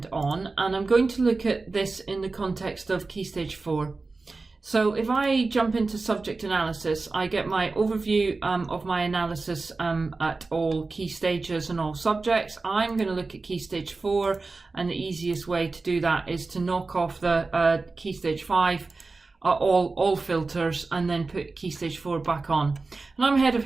on, and I'm going to look at this in the context of Key Stage 4. So if I jump into subject analysis, I get my overview of my analysis at all key stages and all subjects. I'm going to look at Key Stage 4, and the easiest way to do that is to knock off the Key Stage 5, all filters, and then put Key Stage 4 back on. And I'm head of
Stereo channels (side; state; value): left; quieter; 3.8 dB